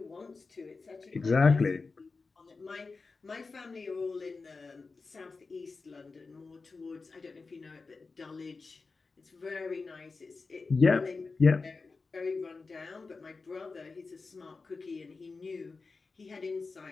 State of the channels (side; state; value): right; quieter; 4.2 dB